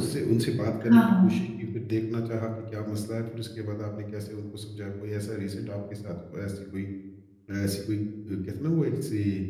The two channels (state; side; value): identical; both; correlation 1.00